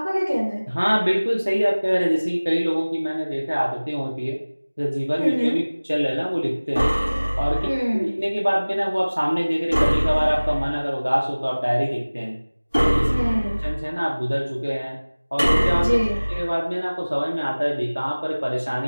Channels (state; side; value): inverted; both; correlation -1.00